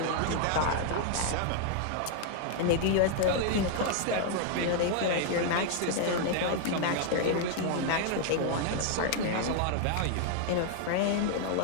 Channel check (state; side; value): different; both; correlation 0.00